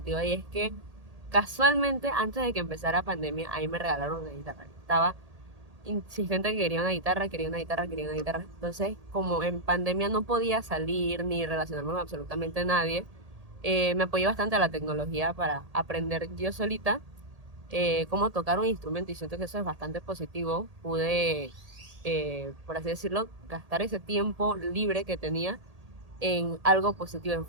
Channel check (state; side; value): late; left; 1.8 ms